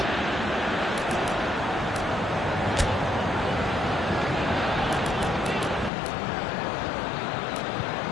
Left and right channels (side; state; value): right; drops out; at 5.9 s